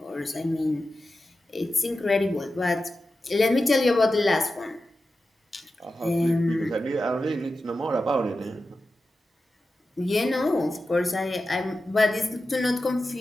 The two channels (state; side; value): normal; both; correlation 0.92